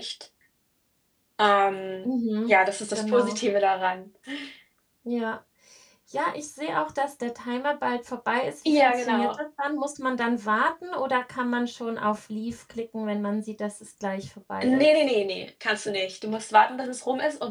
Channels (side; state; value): both; identical; correlation 1.00